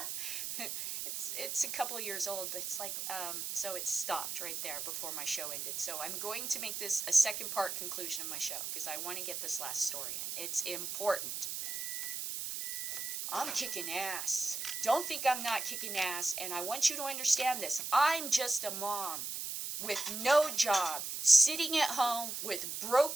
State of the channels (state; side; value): noise; right; hiss, 4 dB below the sound